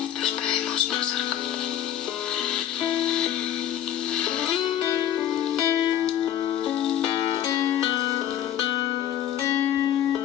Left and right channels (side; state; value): right; quieter; 10.9 dB